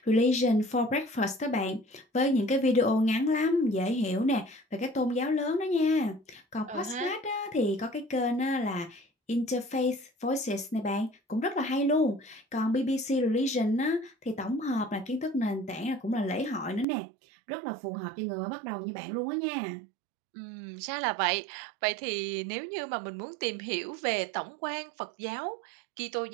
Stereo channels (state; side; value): drops out; left; at 16.9 s